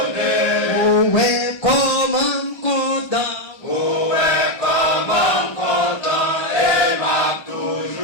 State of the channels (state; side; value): late; right; 1.3 ms